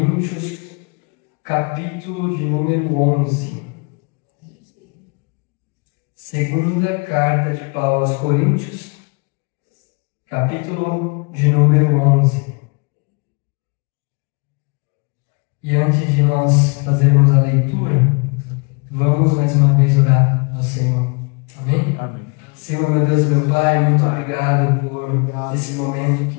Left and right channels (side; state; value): right; quieter; 32.8 dB